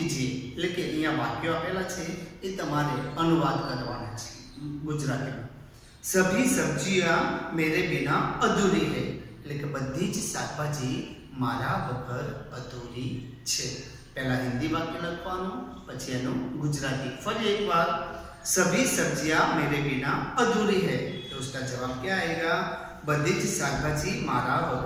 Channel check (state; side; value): identical; both; correlation 1.00